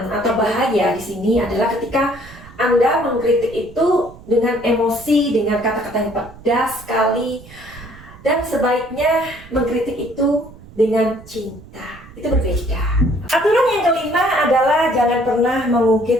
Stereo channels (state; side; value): noise; right; rumble, 20 dB below the sound